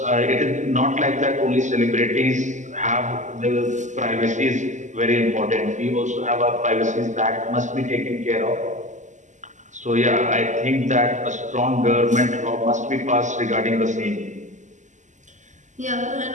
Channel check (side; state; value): left; late; 0.35 ms